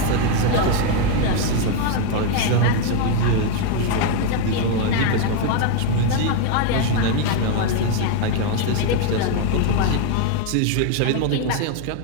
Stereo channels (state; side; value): different; both; correlation 0.01